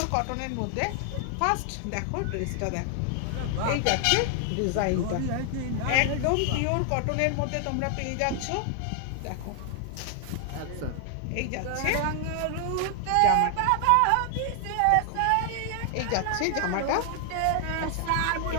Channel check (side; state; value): both; different; correlation 0.00